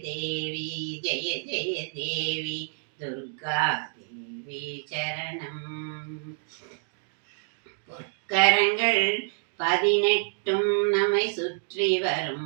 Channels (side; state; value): left; silent; 59 dB below the other